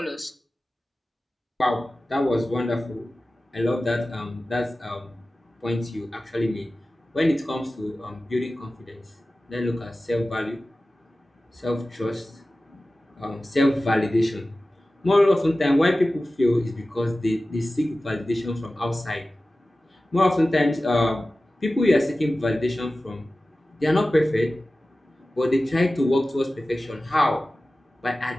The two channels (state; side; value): normal; both; correlation 0.96